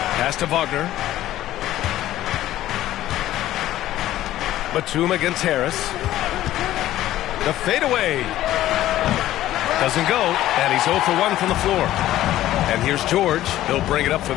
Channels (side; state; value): right; quieter; 14.0 dB